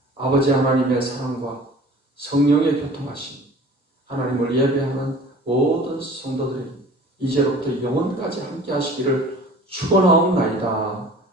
아버지 하나님의 사랑과 성령의 교통하심, 하나님을 예배하는 모든 성도들이 이제로부터 영원까지 함께 하시기를 축원하옵나이다.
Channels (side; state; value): both; normal; correlation 0.45